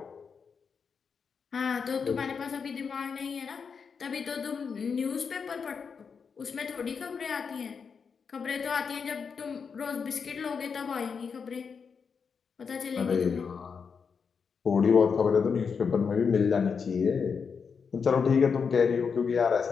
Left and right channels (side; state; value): right; quieter; 5.9 dB